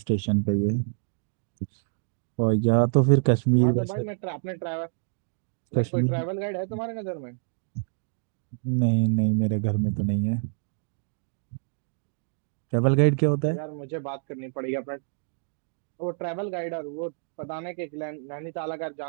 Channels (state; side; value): silent; left; digital silence